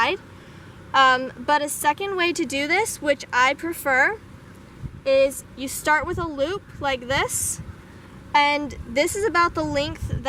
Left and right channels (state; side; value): identical; both; correlation 1.00